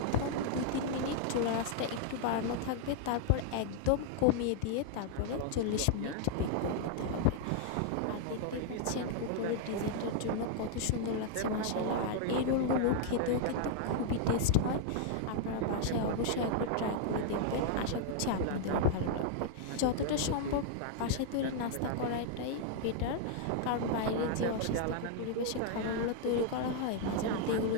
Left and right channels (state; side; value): different; both; correlation 0.00